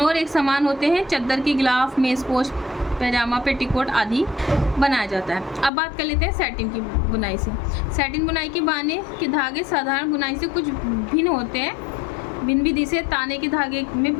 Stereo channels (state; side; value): drops out; right; at 5.7 s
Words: और एक समान होते हैं। चद्दर की गिलाफ, मेज़पोश, पैजामा, पेटीकोट आदि बनाया जाता है। अब बात कर लेते हैं सैटिन की बुनाई से। सैटिन बुनाई के बाने के धागे साधारण बुनाई से कुछ भिन्न होते हैं। भिन्न विधि से ताने के धागे में